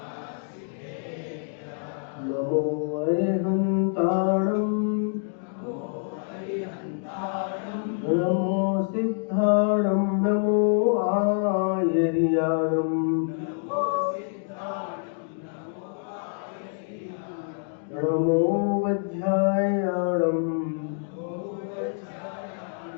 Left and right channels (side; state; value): right; silent; digital silence